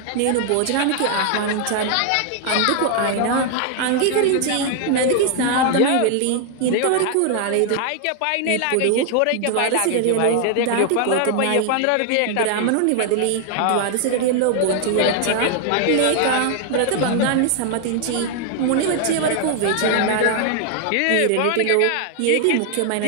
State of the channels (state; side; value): different; both; correlation 0.00